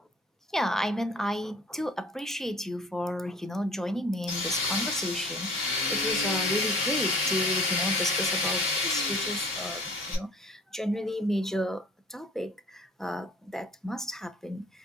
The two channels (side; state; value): both; normal; correlation 0.49